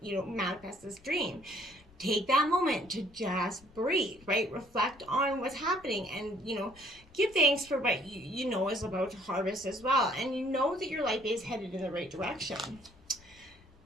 to, manifest this dream. Take that moment to just breathe, right? Reflect on what's happening and, give thanks for what you know is about to harvest as well. And you know that your life is headed in the right direction.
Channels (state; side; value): noise; left; rumble, 25 dB below the sound